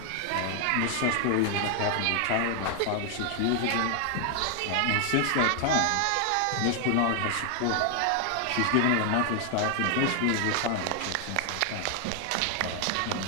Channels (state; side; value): different; both; correlation 0.00